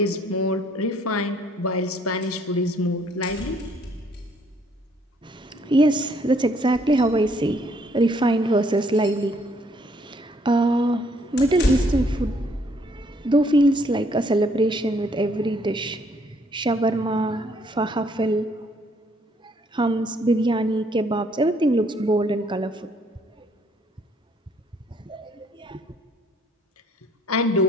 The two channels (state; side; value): normal; both; correlation 0.66